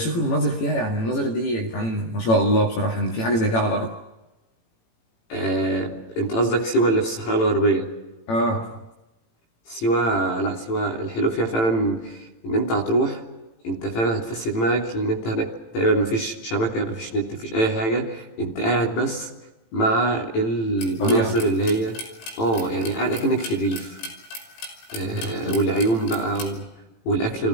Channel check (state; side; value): late; right; 18 ms